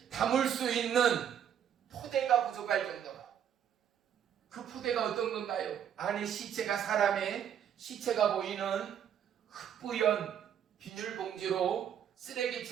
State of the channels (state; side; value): quieter; left; 9.2 dB